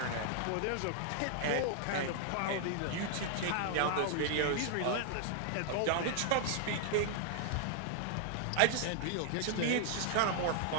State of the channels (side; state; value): both; different; correlation 0.00